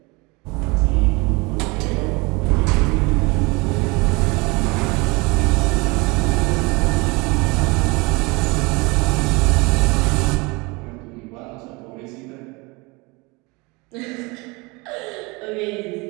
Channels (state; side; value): quieter; left; 26.1 dB